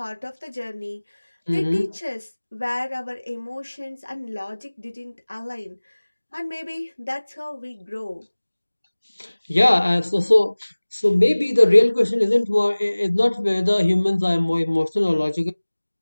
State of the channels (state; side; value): inverted; both; correlation -1.00